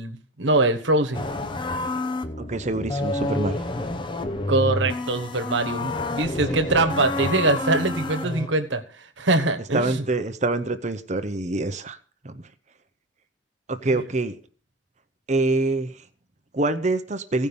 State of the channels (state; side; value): normal; both; correlation 0.18